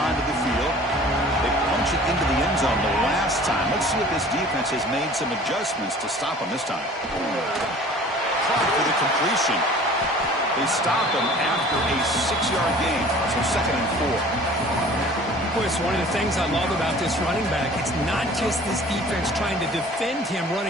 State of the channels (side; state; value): both; normal; correlation 0.47